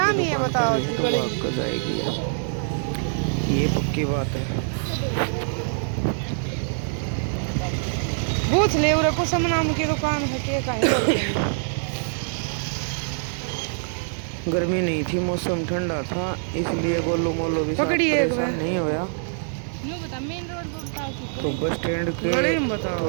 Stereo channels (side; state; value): left; silent; digital silence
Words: की दुकान कर रही है तो भाग कर जाएगी। ये पक्की बात है। पूछ ले उरे कुसुम नाम की दुकान है के कहीं। गर्मी नहीं थी, मौसम ठंडा था, इसलिए गोलू मोलू भी साथ परेशान नहीं होया। तो बस स्टैंड के